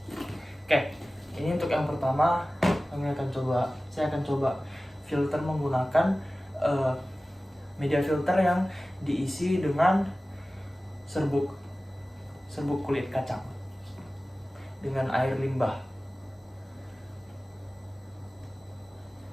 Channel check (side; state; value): both; normal; correlation 0.97